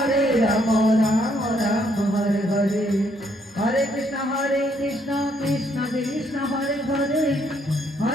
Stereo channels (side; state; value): both; normal; correlation 0.70